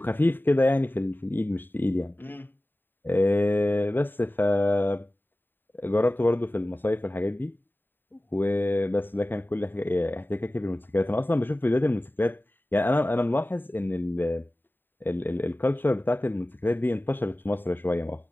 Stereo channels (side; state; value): right; late; 0.093 ms